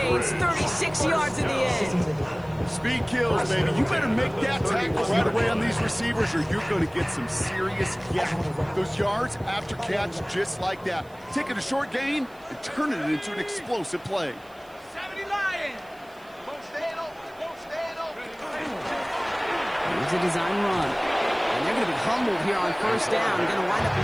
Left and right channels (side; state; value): right; noise; hiss, 28 dB below the sound